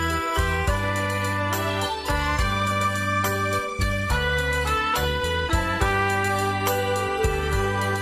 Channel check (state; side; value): identical; both; correlation 1.00